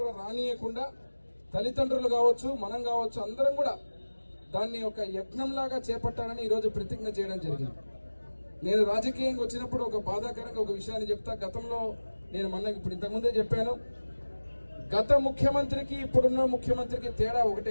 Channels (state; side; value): inverted; both; correlation -1.00